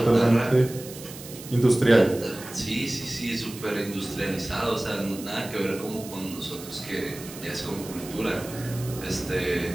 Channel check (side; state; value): right; noise; hiss, 14 dB below the sound